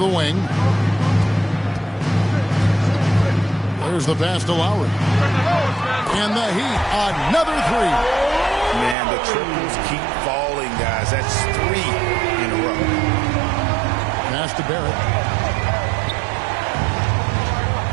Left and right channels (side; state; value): left; drops out; at 9.0 s